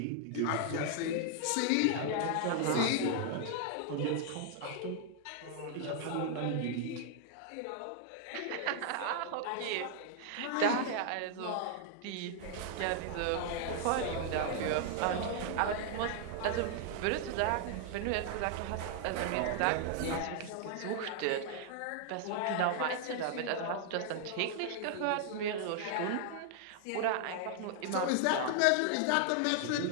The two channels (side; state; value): both; different; correlation 0.00